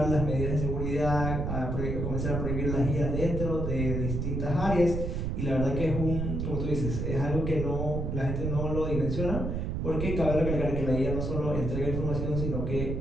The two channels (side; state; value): right; noise; rumble, 1 dB below the sound